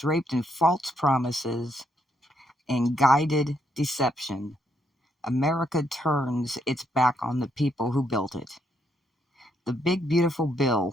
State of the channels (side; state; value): both; normal; correlation 0.75